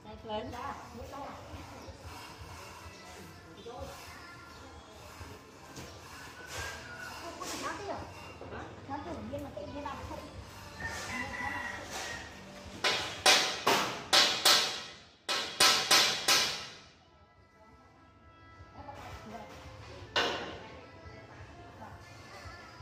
đây lên ra nó tự nhiên mà tự nhiên làm không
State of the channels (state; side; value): identical; both; correlation 1.00